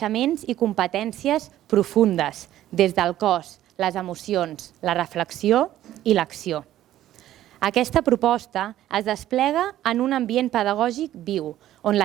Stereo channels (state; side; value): quieter; left; 13.1 dB